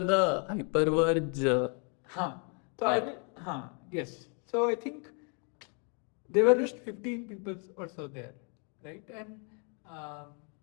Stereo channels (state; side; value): quieter; right; 38.5 dB